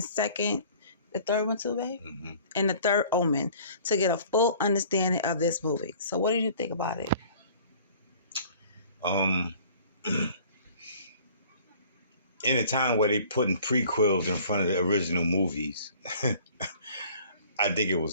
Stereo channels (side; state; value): both; inverted; correlation -0.51